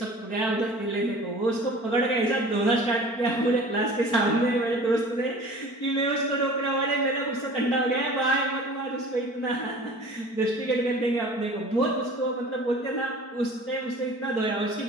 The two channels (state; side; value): late; right; 4.5 ms